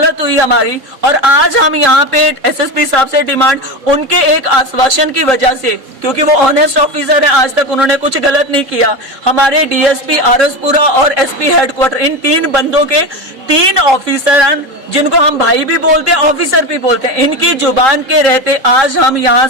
हुई हमारी। और आज हम यहाँ पे SSP साहब से डिमांड, उनके एक आश्वासन की वजह से, क्योंकि वो ऑनेस्ट ऑफिसर है, आज तक उन्होंने कुछ गलत नहीं किया। हमारे DSP आरसपुरा और SP हेडक्वार्टर, इन 3 बंदों के 3 ऑफिसर हैं, जिनको हम भाई भी बोलते हैं, ऑफिसर भी बोलते हैं। इनकी जुबान के रहते आज हम यहाँ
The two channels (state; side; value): late; left; 3.8 ms